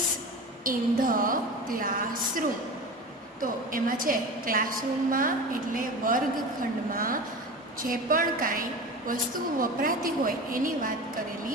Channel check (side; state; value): both; normal; correlation 0.31